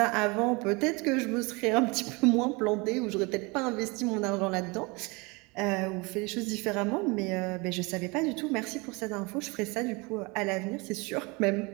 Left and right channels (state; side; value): quieter; left; 27.2 dB